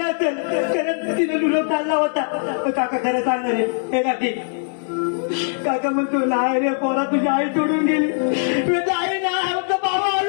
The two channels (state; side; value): silent; right; digital silence